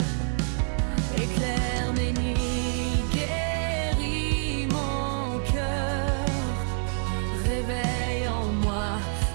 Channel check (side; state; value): left; silent; 57 dB below the other